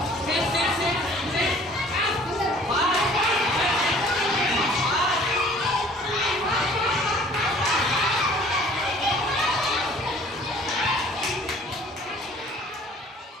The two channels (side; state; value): both; normal; correlation 0.53